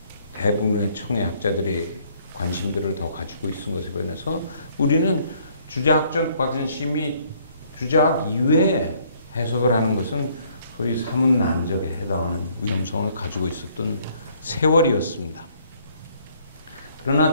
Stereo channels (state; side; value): inverted; both; correlation -0.63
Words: 대부분의 청의 학자들이 관심들을 더 가지고 있은 것에 반해서 우리는 주자학적 관심이 주자학 이외에 해석을 하는 것은 소위 사문난적에 해당하는 위험성을 가지고 있었던 세월이었습니다. 그러나